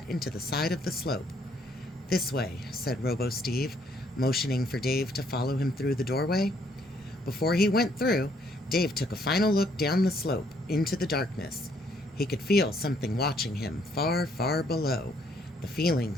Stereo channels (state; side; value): normal; both; correlation 0.68